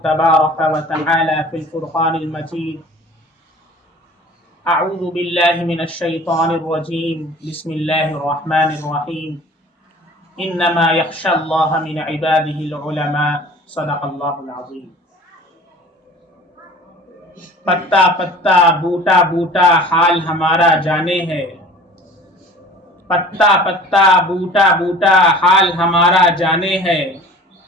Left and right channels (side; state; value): both; normal; correlation 0.44